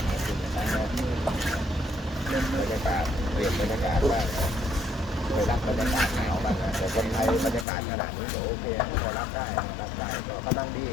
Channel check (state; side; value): drops out; right; at 7.7 s